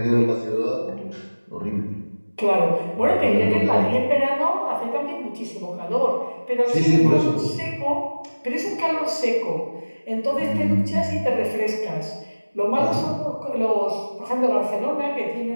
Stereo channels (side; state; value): both; inverted; correlation -1.00